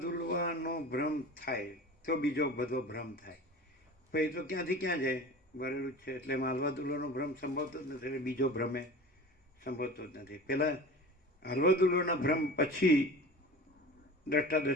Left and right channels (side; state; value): both; normal; correlation 0.37